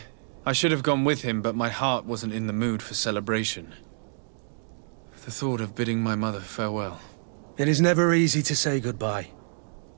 I should have gone with him, but my heart wasn't in the mood for celebration. The thought of bidding my mother farewell. It is never easy to say goodbye.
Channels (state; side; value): silent; left; digital silence